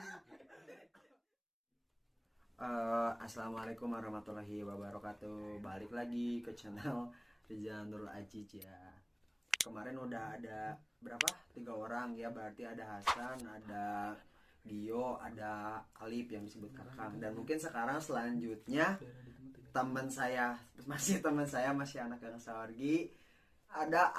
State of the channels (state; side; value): identical; both; correlation 1.00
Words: Assalamualaikum warahmatullahi wabarakatuh. Balik lagi ke channel Rizal Nurul Aziz ya. Kemarin udah ada berapa? 3 orang ya, berarti ada Hasan, ada Gio, ada Alip yang disebut Kakang. Dan mungkin sekarang selanjutnya teman saya masih anak Gang Sawargi, ada